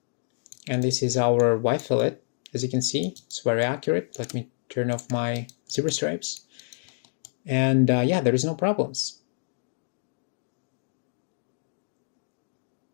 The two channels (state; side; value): silent; right; 60 dB below the other